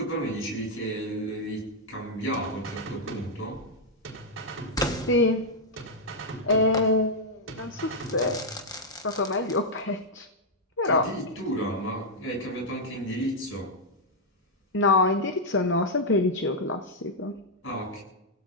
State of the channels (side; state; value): both; normal; correlation -0.03